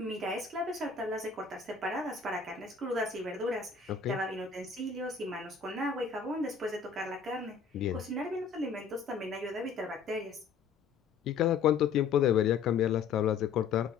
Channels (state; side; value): quieter; right; 5.8 dB